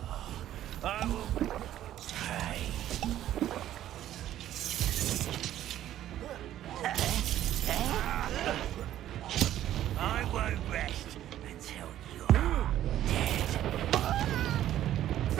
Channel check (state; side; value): quieter; left; 12.4 dB